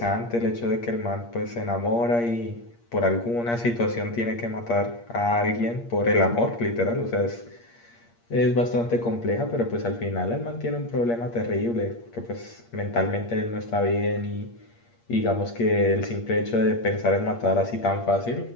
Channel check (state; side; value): late; right; 8.6 ms